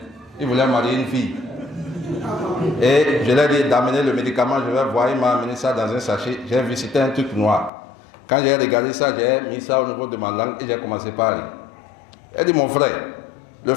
Il voulait marier une fille. Et je lui ai dit d'amener le médicament, je vais voir, il m'a amené ça dans un sachet. J'ai vu, c'était un truc noir. Quand j'ai regardé ça, j'ai mis ça au niveau de ma langue et j'ai commencé par rire. Il a dit mon frère, le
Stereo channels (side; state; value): right; drops out; at 7.7 s